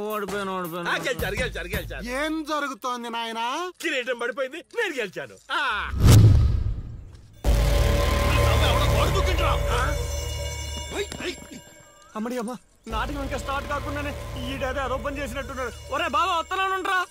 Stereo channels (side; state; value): both; identical; correlation 1.00